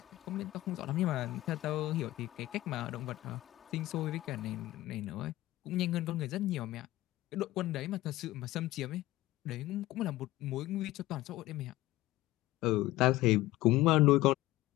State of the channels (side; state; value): right; quieter; 16.9 dB